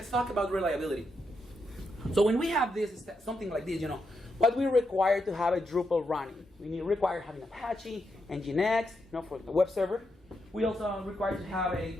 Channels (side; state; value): both; normal; correlation 0.83